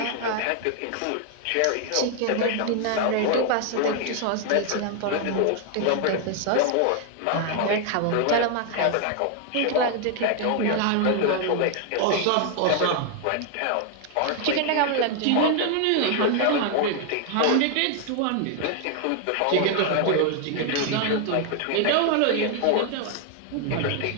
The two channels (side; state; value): both; different; correlation 0.00